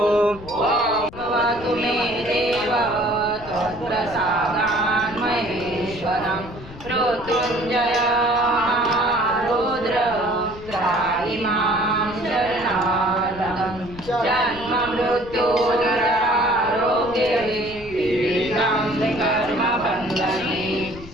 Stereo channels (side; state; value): left; noise; rumble, 16 dB below the sound